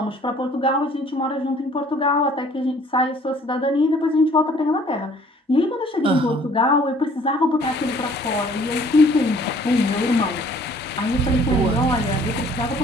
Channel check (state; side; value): normal; both; correlation 0.56